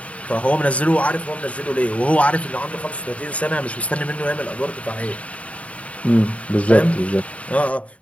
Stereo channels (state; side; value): late; right; 0.066 ms